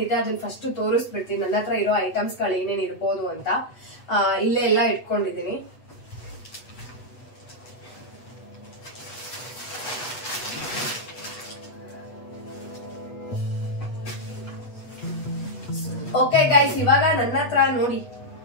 ಅದನ್ನ ಫಸ್ಟ್ ತೋರಿಸ್ಬಿಡ್ತೀನಿ, ನನ್ನ ಹತ್ರ ಇರೋ ಐಟಮ್ಸ್ ಗಳು ಏನೇನ್ ಇರ್ಬೋದು ಅಂತ. ಇಲ್ಲೇ ಎಲ್ಲ ಇಟ್ಕೊಂಡಿದೀನಿ. ಓಕೆ ಗೈಸ್, ಇವಾಗ ನನ್ನ ಹತ್ರ ನೋಡಿ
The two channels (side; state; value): right; late; 8.1 ms